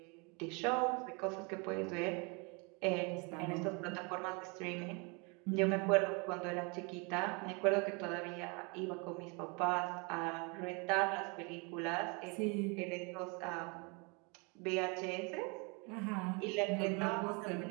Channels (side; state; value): left; quieter; 31.5 dB